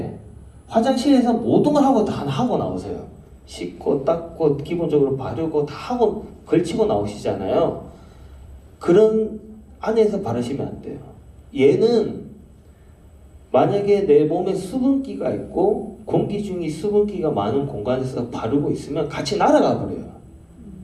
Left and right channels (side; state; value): both; identical; correlation 1.00